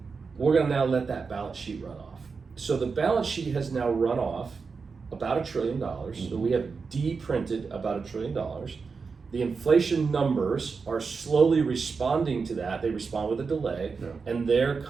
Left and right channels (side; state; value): left; quieter; 5.0 dB